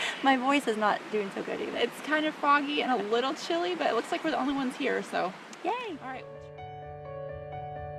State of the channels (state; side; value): identical; both; correlation 1.00